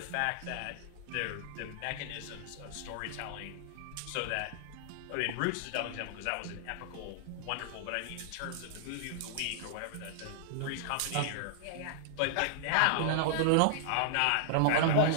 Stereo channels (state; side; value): different; both; correlation -0.01